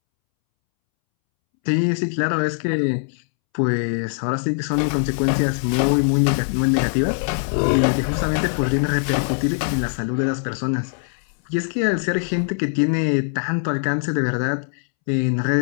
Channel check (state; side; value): silent; right; 65 dB below the other